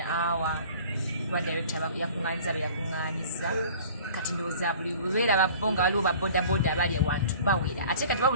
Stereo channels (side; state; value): both; inverted; correlation -0.46